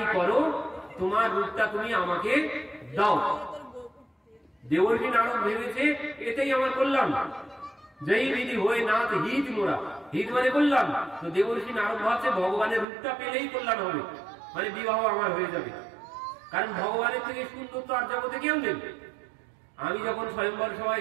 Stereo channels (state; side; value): drops out; left; at 12.9 s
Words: করো, তোমার রূপটা তুমি আমাকে দাও। দেবর্ষি নারদ ভেবেছে এটাই আমার কল্যাণ, জয়ী বিধি হয়ে নাথ হিত মোরা, হিত মানে কল্যাণ। তো দেবর্ষি নারদ ভাবছে ভগবানের রূপটা পেলেই কল্যাণ হবে, মানে বিবাহ আমার হয়ে যাবে। কারণ ভগবানের থেকে সুন্দর তো আর জগতে কেউ নেই। আমি যখন স্বয়ম্বর